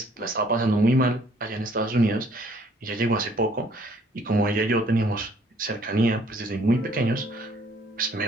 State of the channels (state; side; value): normal; both; correlation 0.61